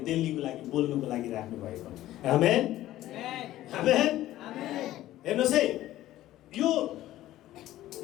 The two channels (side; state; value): right; quieter; 14.6 dB